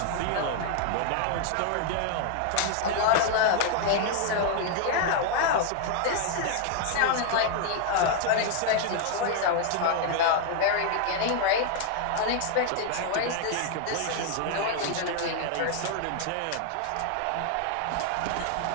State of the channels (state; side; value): different; both; correlation 0.00